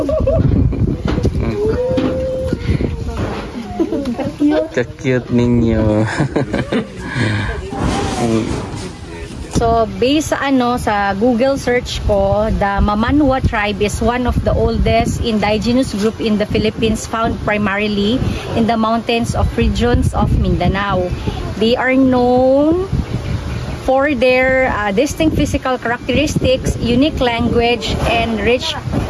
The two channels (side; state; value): both; identical; correlation 1.00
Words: Ka-cute ninyo. So based sa sa Google search ko, the Mamanwa tribe is one of the oldest indigenous group in the Philippines, found primarily in the mountains of regions of Mindanao. They are known for their distinct physical characteristics, unique language, and rich